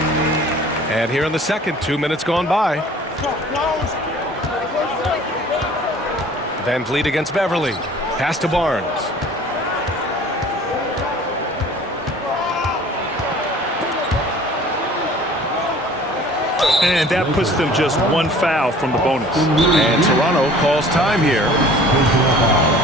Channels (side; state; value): both; normal; correlation 0.48